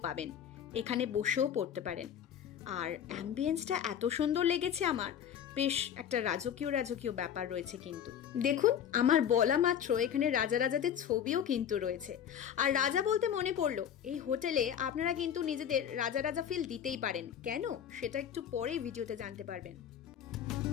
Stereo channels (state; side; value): quieter; right; 9.1 dB